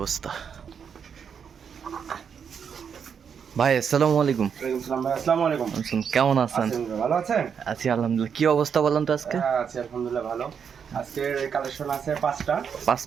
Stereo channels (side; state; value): left; quieter; 7.1 dB